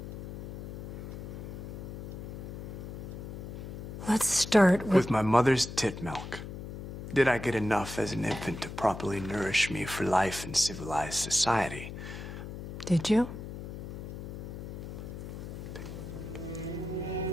Let's start With my mother's tit milk. Did I get enough as an infant to properly nourish me for life in civilized society? Did you?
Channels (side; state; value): left; noise; hum, 9 dB below the sound